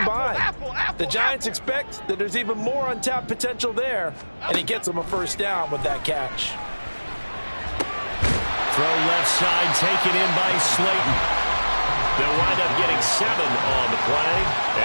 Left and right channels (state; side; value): inverted; both; correlation -1.00